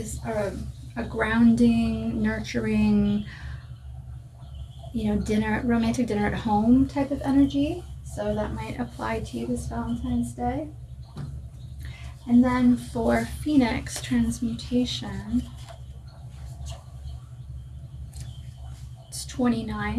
a grounding, nurturing, romantic dinner at home type of energy. So that might apply to you this Valentine's Day. And then for Phoenix Transmutation, it's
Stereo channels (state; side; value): identical; both; correlation 1.00